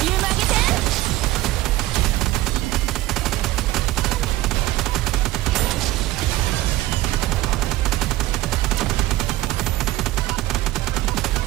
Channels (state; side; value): quieter; left; 16.7 dB